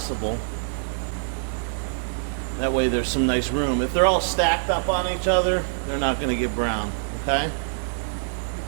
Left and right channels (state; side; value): silent; left; 62 dB below the other